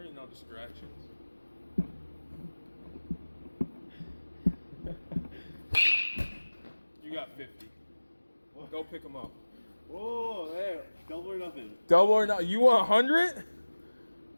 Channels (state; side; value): inverted; both; correlation -1.00